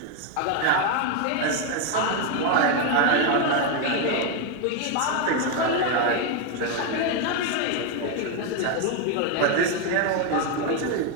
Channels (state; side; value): different; both; correlation 0.01